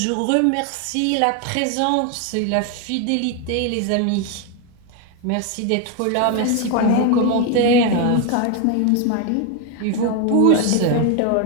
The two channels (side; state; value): both; different; correlation 0.01